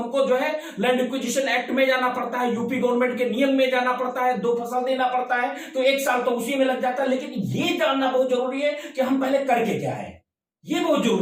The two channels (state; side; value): identical; both; correlation 1.00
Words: जो है लैंड एक्विजिशन एक्ट में जाना पड़ता है, यूपी गवर्नमेंट के नियम में जाना पड़ता है, 2 फसल देना पड़ता है, तो 1 साल तो उसी में लग जाता है। लेकिन ये जानना बहुत जरूरी है कि हम पहले करके क्या है, ये बहुत